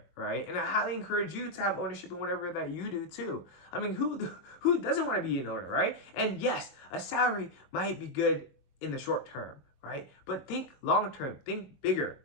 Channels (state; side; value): late; right; 22 ms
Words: right? And I highly encourage you to have ownership in whatever that you do too. I mean, who doesn't want to be an owner, right? And yes, a salary might be good in the short term, right? But think long term, think bigger,